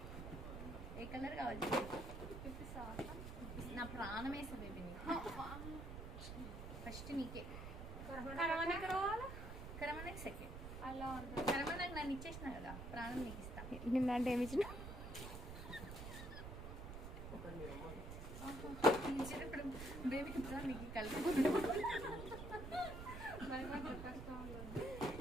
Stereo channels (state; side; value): noise; right; rumble, 8 dB below the sound